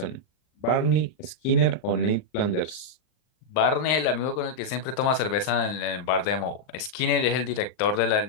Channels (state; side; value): late; right; 39 ms